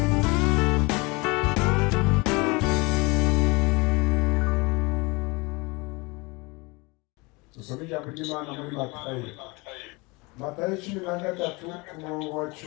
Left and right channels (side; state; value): right; quieter; 26.5 dB